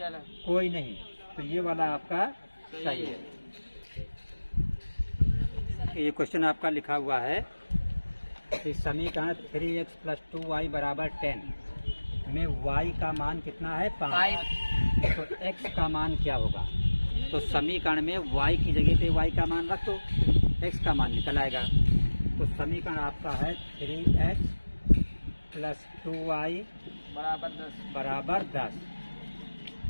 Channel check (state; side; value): inverted; both; correlation -1.00